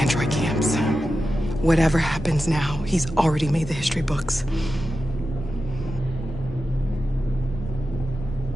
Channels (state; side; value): normal; both; correlation 0.91